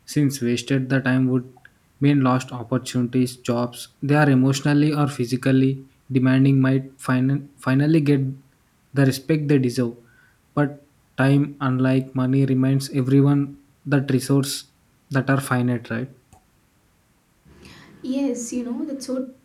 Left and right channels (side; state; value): both; identical; correlation 1.00